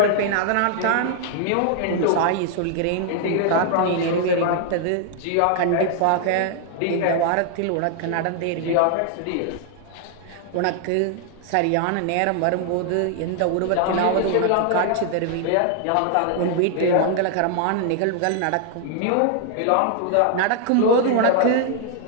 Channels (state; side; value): different; both; correlation 0.00